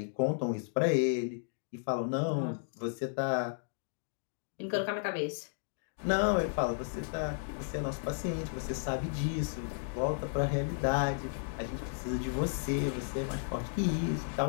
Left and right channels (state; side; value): silent; right; digital silence